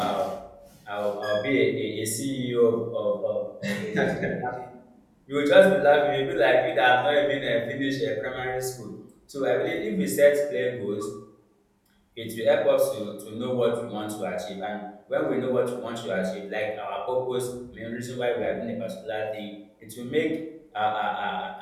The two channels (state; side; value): identical; both; correlation 1.00